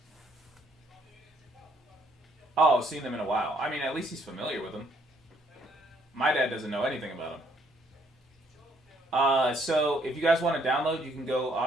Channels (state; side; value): normal; both; correlation 0.68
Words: Oh, seen them in a while. I mean, at least he's familiar with them. My dad doesn't know anything about them. So if you guys want to download, you can go